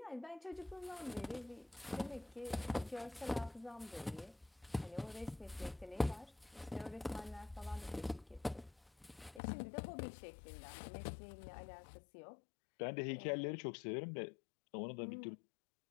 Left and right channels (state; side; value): drops out; right; at 9.4 s